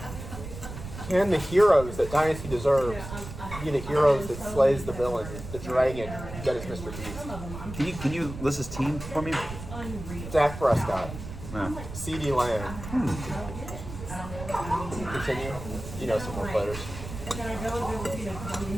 Can the heroes that Dynasty deserves be the heroes that slays the villain, the dragon that is Mr. Beast? Can you list his team for me? Dak Prescott, Yeah. CeeDee Lamb. Continue. You know some more players.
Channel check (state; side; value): noise; right; rumble, 10 dB below the sound